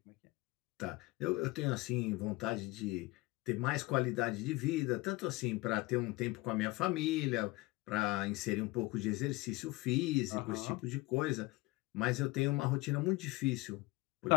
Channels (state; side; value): quieter; right; 21.8 dB